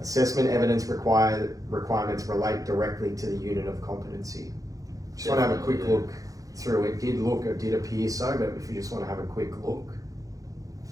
evidence requirements relate directly to the unit of competency. Just want to have a quick Definitely, look through. It did appear so, but if you just want to have a quick look.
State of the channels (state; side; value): late; left; 0.17 ms